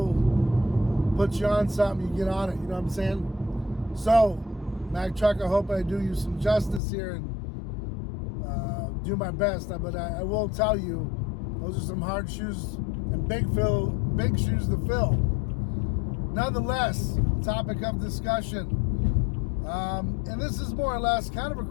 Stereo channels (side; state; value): right; drops out; at 6.8 s